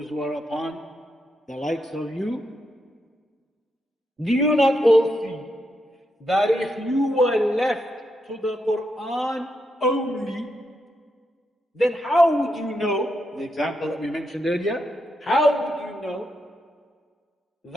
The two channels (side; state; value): both; normal; correlation 0.82